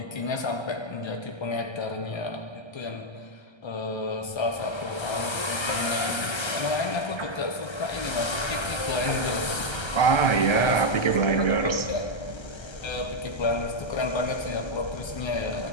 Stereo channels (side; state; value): right; late; 1.3 ms